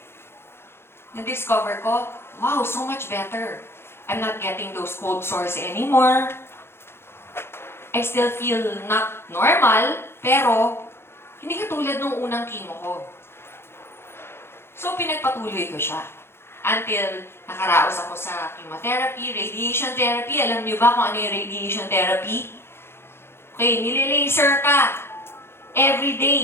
na-discover ko, wow, so much better. I'm not getting those cold sores anymore. I still feel not normal, pero hindi katulad nung unang chemo ko. So, pinagpatuloy ko siya. Until nakaraos ako sa chemotherapy, radiation therapy. Alam niyo ba kung ano yung radiation therapy? Okay, nililaser ka. Every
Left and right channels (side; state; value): right; late; 0.12 ms